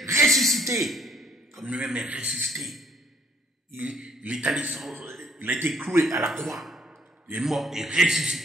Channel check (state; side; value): normal; both; correlation 0.63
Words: ressuscité, comme lui-même est ressuscité. Il est allé, il a été cloué à la croix, il est mort et